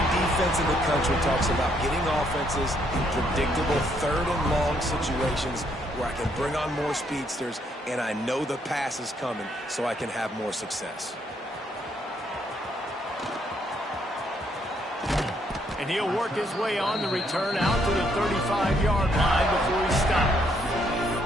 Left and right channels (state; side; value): normal; both; correlation 0.72